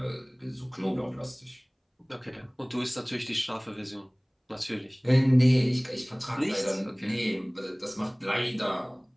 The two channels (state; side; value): identical; both; correlation 1.00